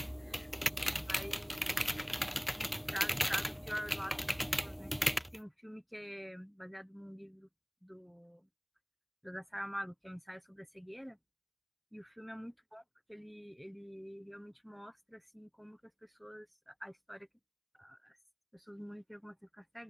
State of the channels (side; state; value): both; identical; correlation 1.00